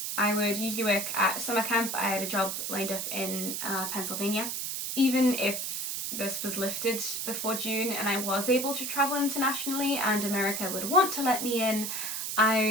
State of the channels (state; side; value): noise; right; hiss, 3 dB below the sound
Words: I would usually work at summer camp. I had a job lined up in Pennsylvania. Even if this was lifted before June and I was able to travel internationally and America would want to let me in,